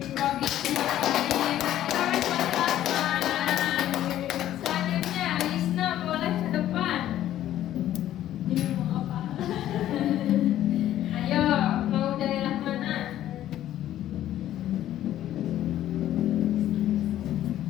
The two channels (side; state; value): right; quieter; 12.6 dB